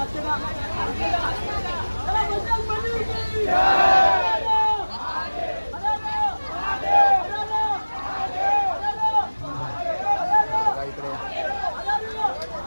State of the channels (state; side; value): inverted; both; correlation -1.00